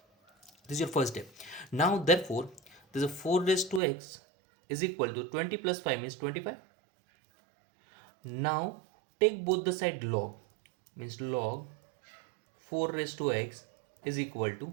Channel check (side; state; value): left; drops out; at 3.8 s